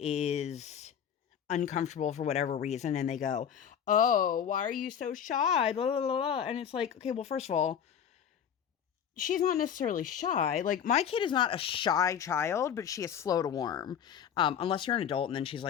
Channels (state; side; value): quieter; right; 8.4 dB